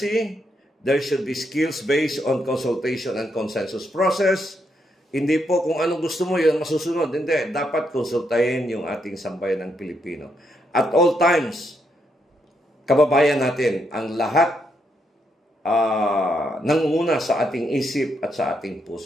There should be skills based on consultation and consensus process. Hindi po kung anong gusto mo, yun masusunod. Hindi. Dapat konsultahin yung ating sambayan ng Pilipino. At all times, kababayan natin, ang lahat nangunguna sa ating isip at sa ating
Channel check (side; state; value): both; normal; correlation 0.78